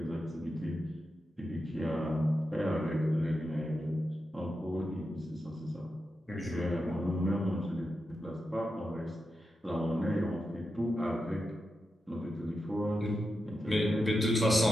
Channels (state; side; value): normal; both; correlation 0.89